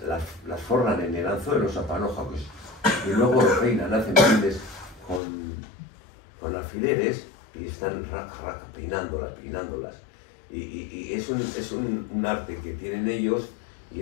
forran en el anzuelo, esa panoja, pues, y luego lo peinan, hacen peines con alfileres y están peinándolas. Y es un arte que tienen ellos,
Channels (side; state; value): right; drops out; at 5.2 s